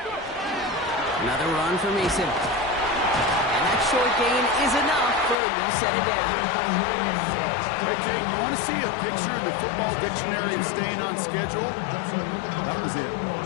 Another run for Mason. And that short gain is enough for a new set of downs. Hey, Kate, you want to see a picture in the football dictionary of staying on schedule? That was it.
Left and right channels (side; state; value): right; drops out; at 5.4 s